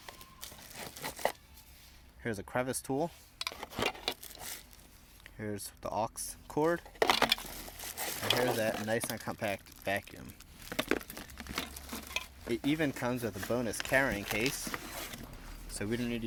Here's a crevice tool. Here's the aux cord. And here's that nice and compact vacuum. It even comes with a bonus carrying case. So we don't need to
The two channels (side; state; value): both; identical; correlation 1.00